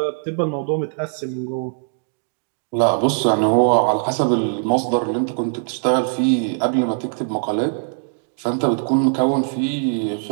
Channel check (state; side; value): silent; left; digital silence